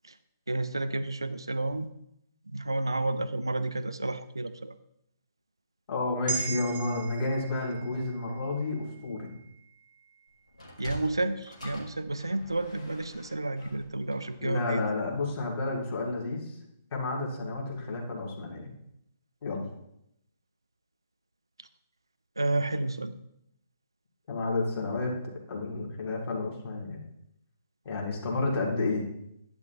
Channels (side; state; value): both; inverted; correlation -0.78